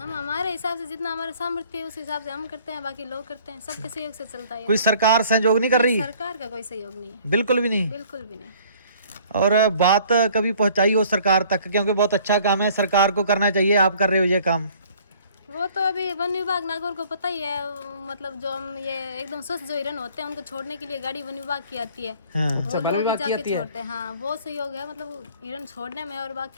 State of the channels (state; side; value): inverted; both; correlation -0.55